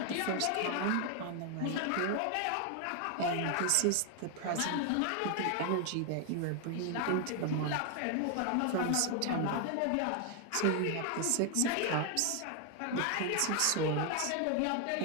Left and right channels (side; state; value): both; different; correlation 0.00